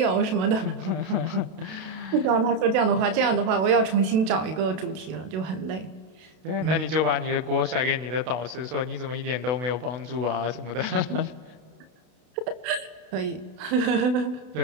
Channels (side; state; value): left; late; 32 ms